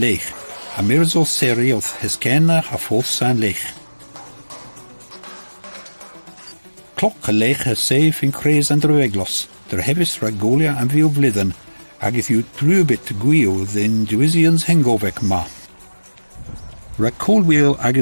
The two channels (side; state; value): both; inverted; correlation -1.00